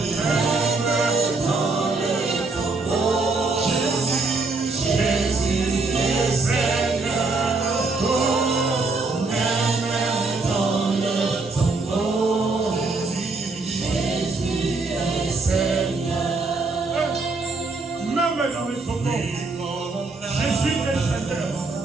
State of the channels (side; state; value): left; quieter; 3.7 dB